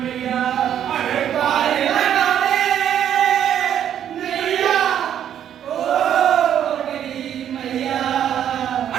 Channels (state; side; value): quieter; left; 9.9 dB